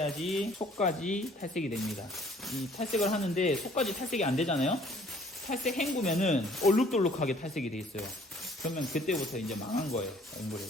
속까지 탈색이 됩니다. 이 탈색을 하는데 속까지 탈색이 안 되잖아요. 탈색 헹구면은 얼룩덜룩하게 탈색이 돼 있어요. 그러면 그때부터 이제 망한 거예요,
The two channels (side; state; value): both; normal; correlation 0.57